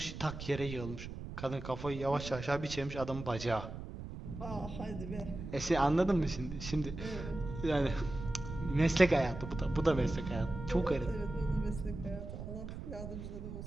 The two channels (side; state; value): right; noise; rumble, 9 dB below the sound